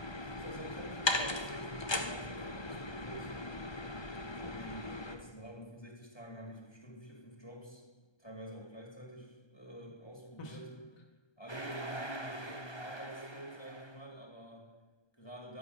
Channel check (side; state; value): right; late; 1.2 ms